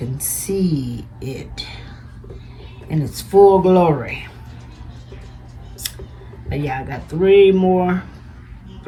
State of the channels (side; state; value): both; identical; correlation 1.00